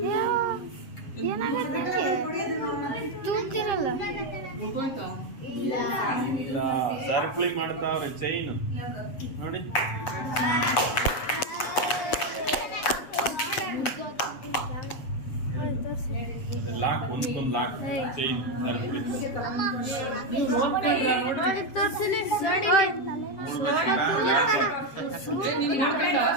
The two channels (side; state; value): right; late; 7.4 ms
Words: ಏನಾಗುತ್ತೆ ತೂಗ್ತಿರಲ್ಲ ಸರ್ಕ್ಲಿ ಮಾಡ್ತಾವ್ರೆ ಚೈನ್ ನೋಡಿ ಲಾಕ್ ಒಂದೊಂದು ಲಾಕ್ ಚೈನ್ ಸರ್ಕ್ಲಿ ತೋರಿಸಿಲಿ